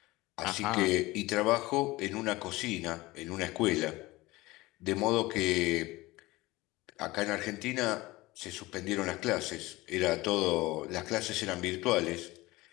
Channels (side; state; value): right; quieter; 20.2 dB